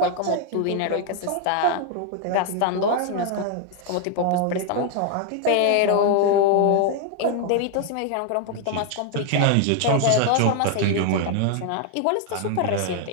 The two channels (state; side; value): different; both; correlation 0.00